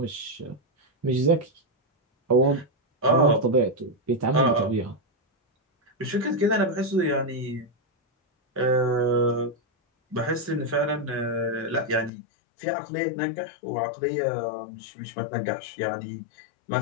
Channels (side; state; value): right; drops out; at 12.1 s